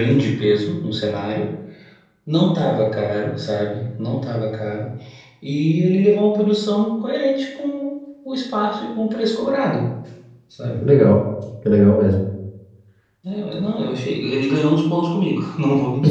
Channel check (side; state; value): both; identical; correlation 1.00